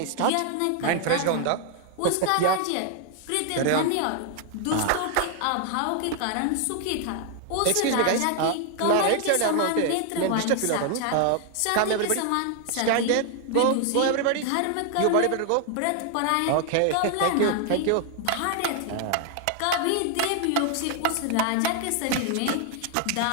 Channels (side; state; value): both; different; correlation 0.00